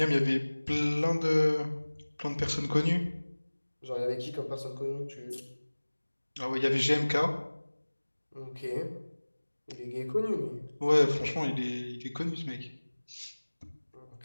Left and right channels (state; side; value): inverted; both; correlation -1.00